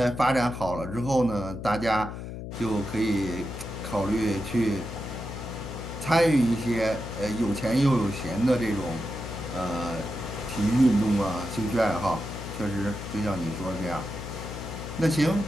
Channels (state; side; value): noise; left; hum, 8 dB below the sound